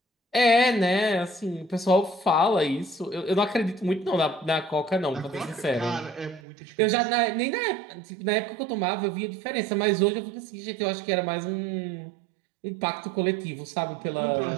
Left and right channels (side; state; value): left; drops out; at 6.4 s